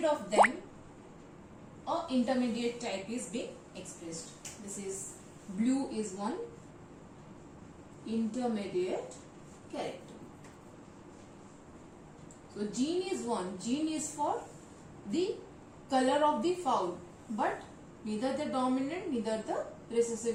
of them, a intermediate type is being expressed. This is blue is one intermediate character. So gene is one. Gene is for the color of the fowl, but neither the dominant neither the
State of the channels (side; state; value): both; identical; correlation 1.00